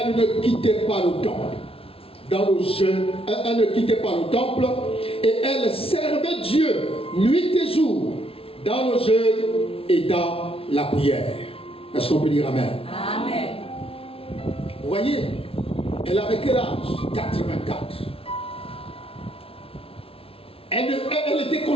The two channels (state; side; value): late; right; 0.27 ms